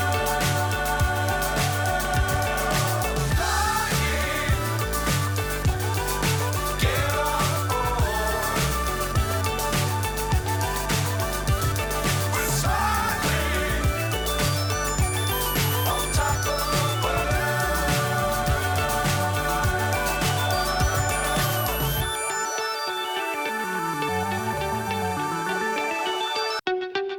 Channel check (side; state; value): both; identical; correlation 1.00